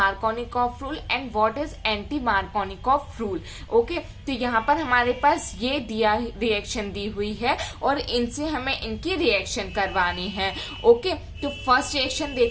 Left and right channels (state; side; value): identical; both; correlation 1.00